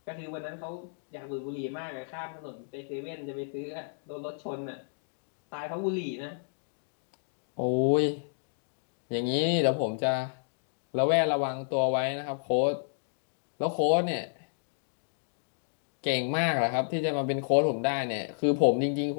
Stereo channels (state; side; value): silent; right; digital silence